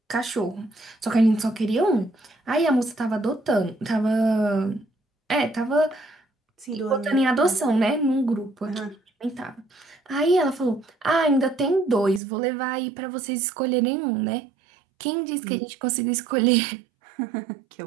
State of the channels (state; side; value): drops out; left; at 12.2 s